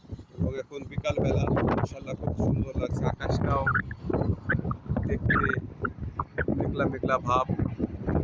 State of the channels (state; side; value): identical; both; correlation 1.00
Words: এবং এখন বিকালবেলা মাশাআল্লাহ খুব সুন্দর লাগছে। আকাশটাও দেখতে মেঘলা মেঘলা ভাব